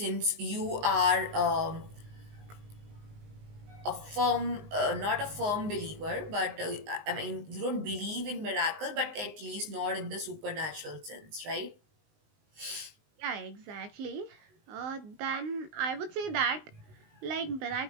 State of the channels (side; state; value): left; late; 19 ms